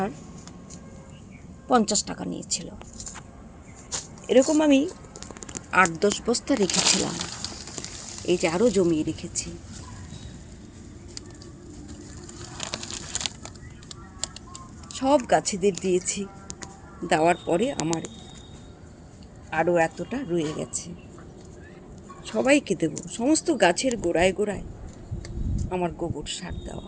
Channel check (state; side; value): identical; both; correlation 1.00